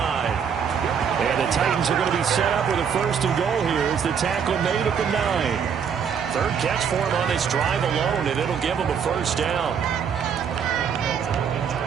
And the Titans are going to be set up with a 1st and goal here as the tackle made at the 9. 3rd catch for him on this drive alone, and it'll give him a first down.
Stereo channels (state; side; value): quieter; left; 7.3 dB